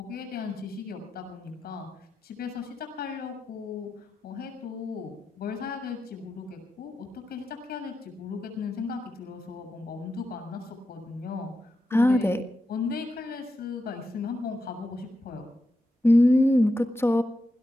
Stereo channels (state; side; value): normal; both; correlation 0.88